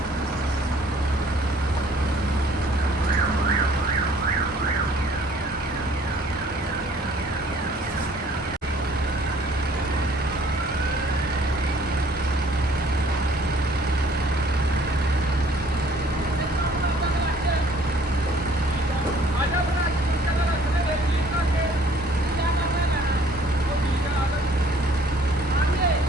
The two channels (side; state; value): both; normal; correlation 0.57